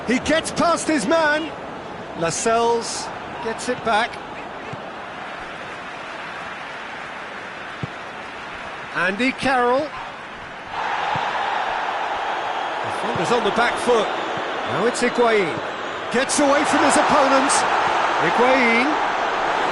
He gets past his man. Lascelles gets it back. Andy Carroll. Defender's on the back foot. Now it's Higuain. Gets away from his opponents. Higuain.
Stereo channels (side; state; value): both; identical; correlation 1.00